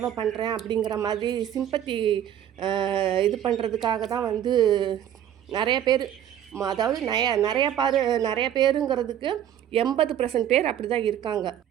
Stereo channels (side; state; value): left; quieter; 10.5 dB